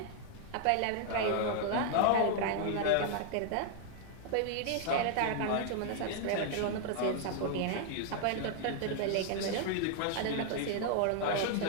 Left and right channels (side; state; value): both; different; correlation 0.00